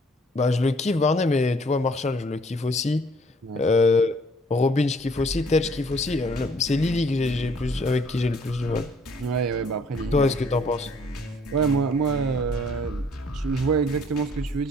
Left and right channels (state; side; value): normal; both; correlation 0.60